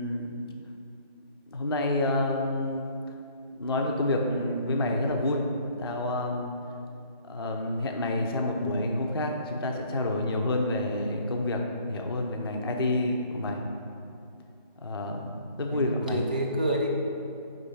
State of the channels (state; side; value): inverted; both; correlation -0.57